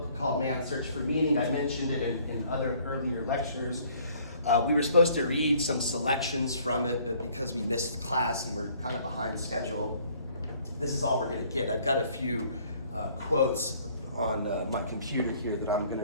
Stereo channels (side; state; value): both; inverted; correlation -0.59